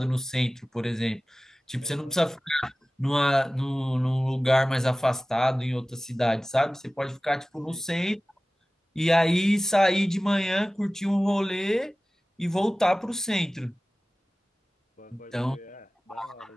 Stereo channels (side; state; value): both; normal; correlation 0.97